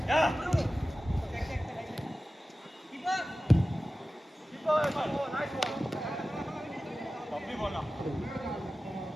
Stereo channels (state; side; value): normal; both; correlation 0.95